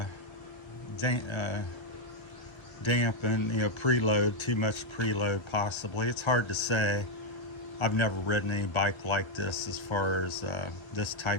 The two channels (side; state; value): right; late; 1.3 ms